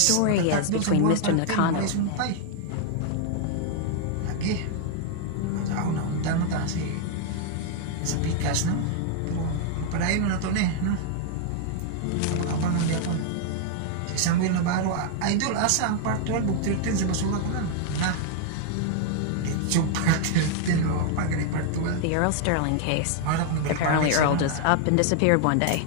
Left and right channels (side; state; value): both; different; correlation 0.00